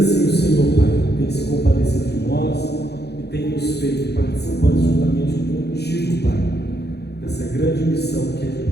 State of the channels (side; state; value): right; late; 0.48 ms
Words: o Senhor, Pai, tem se compadecido de nós e tem nos feito participantes juntamente contigo, Pai, dessa grande missão que é de